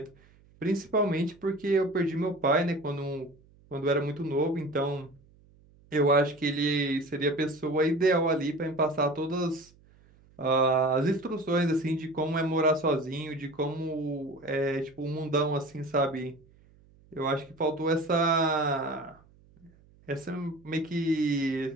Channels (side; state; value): right; noise; hum, 28 dB below the sound